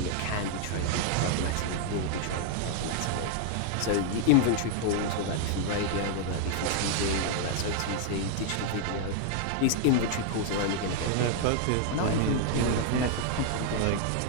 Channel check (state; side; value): different; both; correlation 0.00